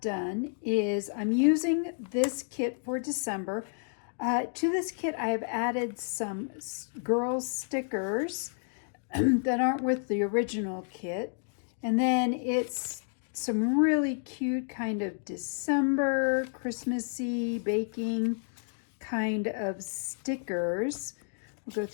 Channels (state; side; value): silent; right; 57 dB below the other